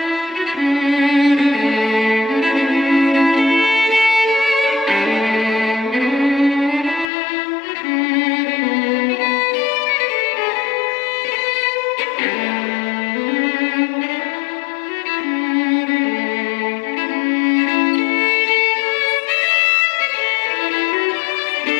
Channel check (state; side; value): drops out; right; at 7.1 s